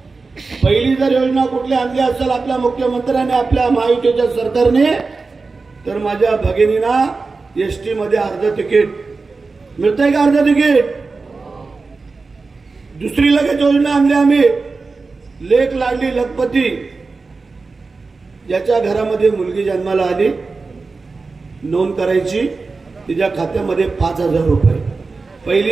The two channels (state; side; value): quieter; left; 4.1 dB